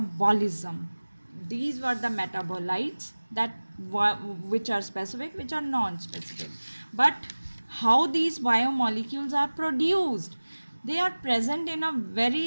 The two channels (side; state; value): both; inverted; correlation -1.00